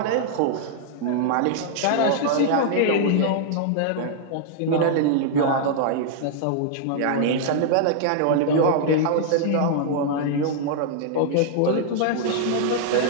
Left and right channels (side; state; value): both; different; correlation -0.01